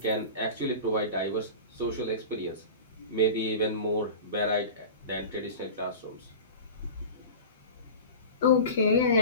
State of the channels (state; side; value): inverted; both; correlation -0.34